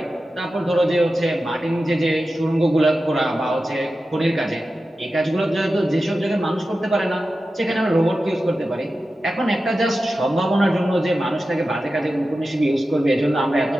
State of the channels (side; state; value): both; normal; correlation 0.93